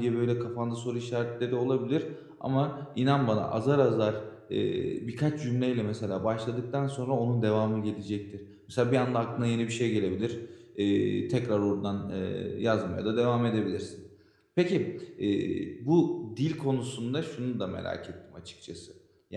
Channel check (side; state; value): both; identical; correlation 1.00